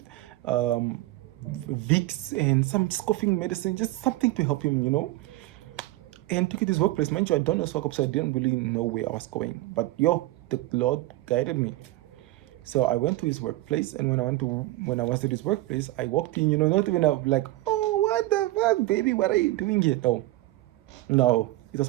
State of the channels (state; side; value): quieter; left; 17.8 dB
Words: Vicks, and some just coughing medicine, just something to help him, you know. And took it to his workplace. Mind you, I don't know Swakop, so I didn't really know where I was going. But yo, the Lord guided me. So I went to his workplace, and when I was at his workplace, I walked in, you know, not even like, oh, what the fuck, baby, what are you doing here? No, it was